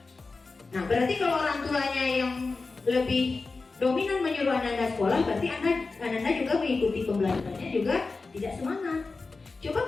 Nah, berarti kalau orang tuanya yang lebih dominan menyuruh Ananda sekolah, berarti Ananda juga mengikuti pembelajarannya juga tidak semangat. Coba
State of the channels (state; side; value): quieter; right; 3.9 dB